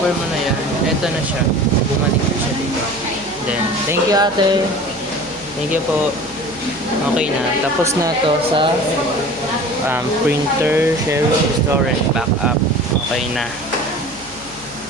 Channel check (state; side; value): noise; left; hum, 22 dB below the sound